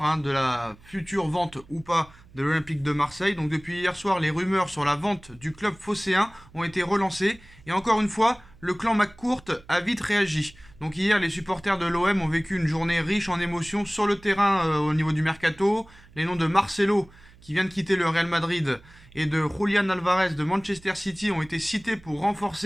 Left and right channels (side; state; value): right; noise; hum, 25 dB below the sound